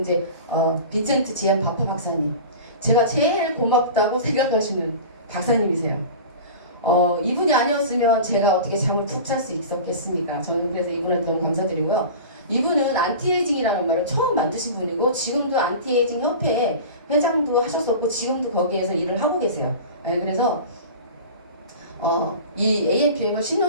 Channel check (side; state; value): both; inverted; correlation -0.35